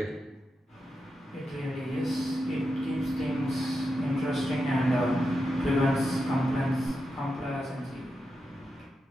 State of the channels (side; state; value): both; normal; correlation 0.88